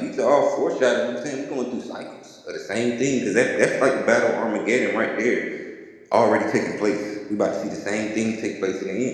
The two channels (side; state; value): both; identical; correlation 1.00